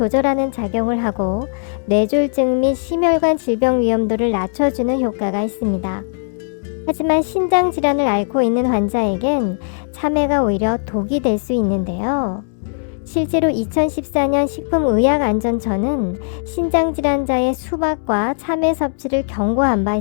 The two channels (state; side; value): silent; right; 65 dB below the other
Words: 작용을 하고 뇌졸중 및 심혈관 질병 위험도를 낮춰주는 효과가 있습니다. 하지만 신장 질환을 앓고 있는 환자에겐 참외가 오히려 독이 될 수 있는데요. 실제로 2014년 식품의약안전처는 신장질환자의 수박과 참외 섭취를 경고한 바